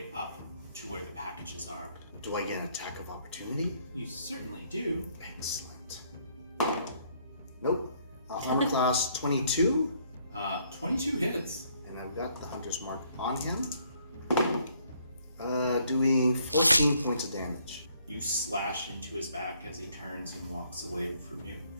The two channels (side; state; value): both; inverted; correlation -0.67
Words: up to where the packages are. Do I get an attack of opportunity? You certainly do. Excellent. Nope. Armor class 22, 22 hits. and I've got the Hunter's Mark on him. Doing 14 points of damage. You slash into his back as he turns and walks away from you.